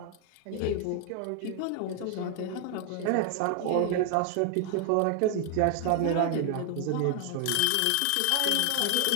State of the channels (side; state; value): both; different; correlation 0.00